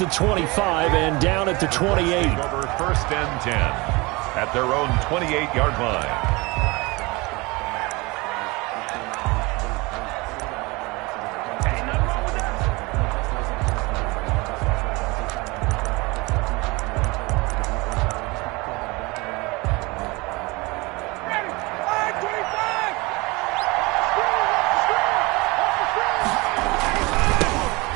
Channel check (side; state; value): left; quieter; 24.6 dB